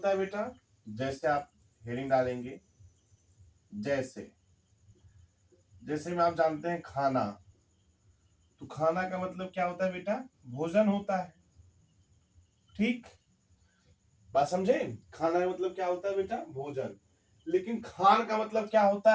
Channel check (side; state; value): both; identical; correlation 1.00